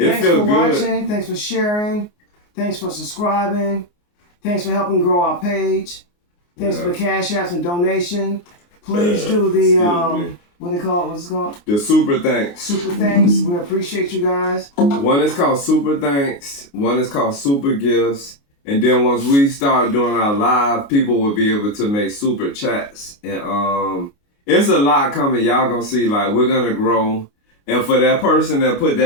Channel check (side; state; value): right; late; 29 ms